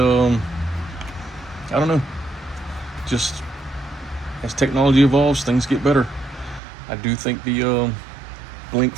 don't know. Just as technology evolves, things get better. I do think the Blink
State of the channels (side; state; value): left; drops out; at 6.6 s